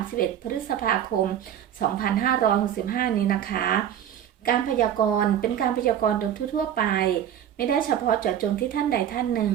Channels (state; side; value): quieter; left; 10.2 dB